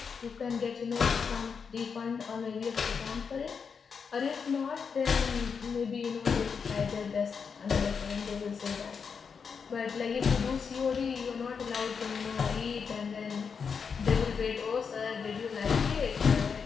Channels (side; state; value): right; quieter; 6.0 dB